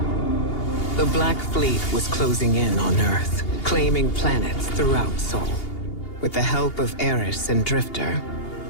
The Black Fleet was closing in on Earth, claiming planets throughout Sol. With the help of Eris and Drifter,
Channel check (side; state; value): right; late; 2.8 ms